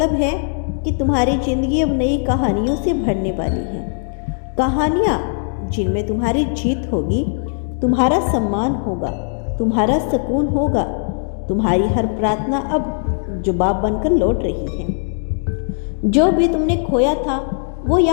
है कि तुम्हारी जिंदगी अब नई कहानियों से भरने वाली है। कहानियाँ जिनमें तुम्हारी जीत होगी, तुम्हारा सम्मान होगा, तुम्हारा सुकून होगा। तुम्हारी हर प्रार्थना अब जवाब बनकर लौट रही है। जो भी तुमने खोया था वो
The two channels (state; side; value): silent; right; digital silence